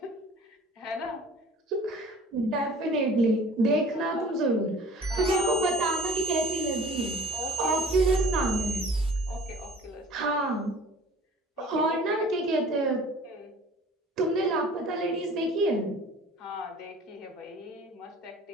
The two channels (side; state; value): both; normal; correlation 0.47